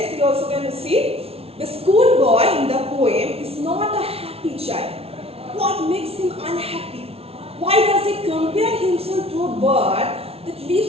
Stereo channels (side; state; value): left; late; 0.29 ms